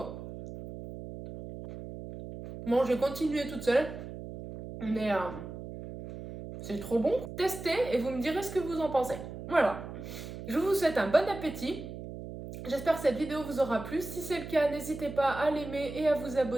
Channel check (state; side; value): noise; right; hum, 10 dB below the sound